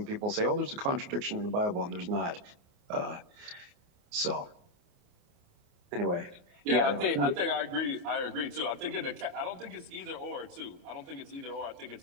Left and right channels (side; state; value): left; late; 28 ms